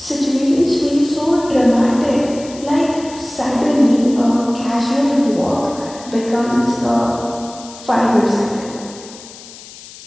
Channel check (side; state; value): left; noise; hiss, 18 dB below the sound